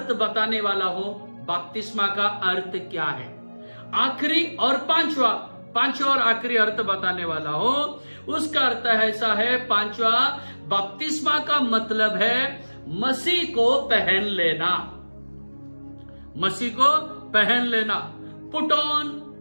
बताने वाला हूं। बपतिस्मा का अर्थ क्या है? आखिरी और पांचवा और आखिरी अर्थ बताने वाला हूं। उसका अर्थ ऐसा है, पांचवा, बपतिस्मा का मतलब है मसीह को पहन लेना। मसीह को पहन लेना,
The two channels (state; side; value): inverted; both; correlation -1.00